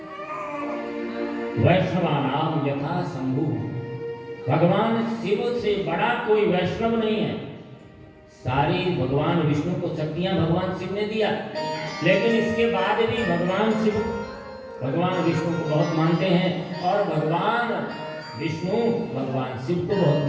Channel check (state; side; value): identical; both; correlation 1.00